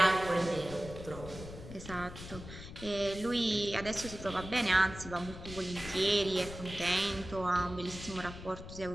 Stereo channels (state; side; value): noise; left; rumble, 12 dB below the sound